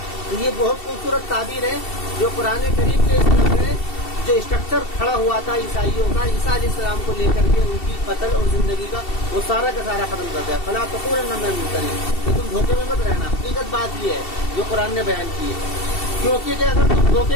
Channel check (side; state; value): right; late; 2.7 ms